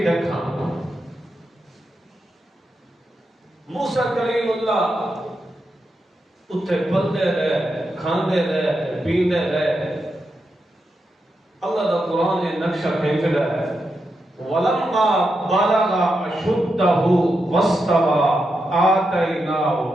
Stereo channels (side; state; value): both; normal; correlation 0.86